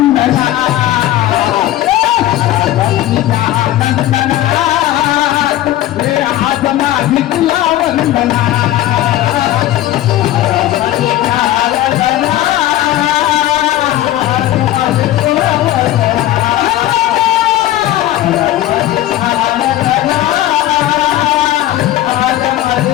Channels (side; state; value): right; quieter; 13.8 dB